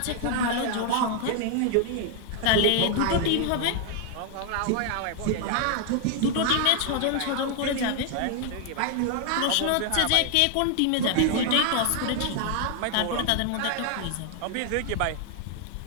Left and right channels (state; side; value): different; both; correlation 0.00